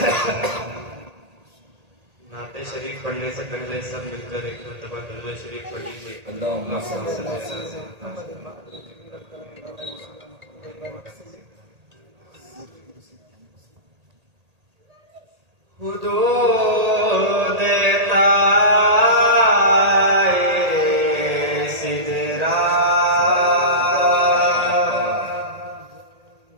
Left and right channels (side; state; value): left; late; 1.8 ms